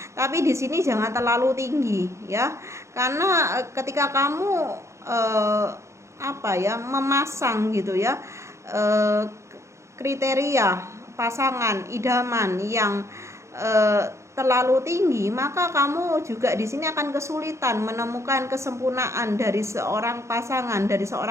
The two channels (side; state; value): left; late; 0.14 ms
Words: Tapi di sini jangan terlalu tinggi ya. Karena ketika kamu memasang gitu ya, kriteria pasangan idaman yang terlalu tinggi, maka kamu juga di sini akan kesulitan menemukan kesempurnaan dari seorang pasangan, dari